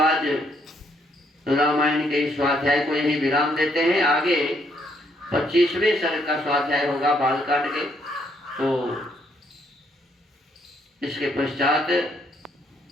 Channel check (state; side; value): normal; both; correlation 0.71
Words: रामायण के इस स्वाध्याय को यही विराम देते हैं। आगे 25वें सर्ग का स्वाध्याय होगा बालकांड के। तो इसके पश्चात